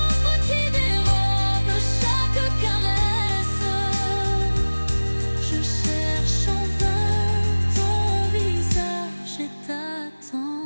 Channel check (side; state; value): both; inverted; correlation -1.00